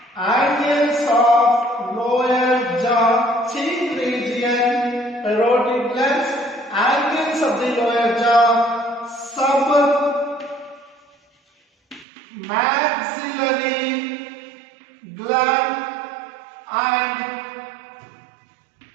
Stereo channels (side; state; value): left; drops out; at 12.1 s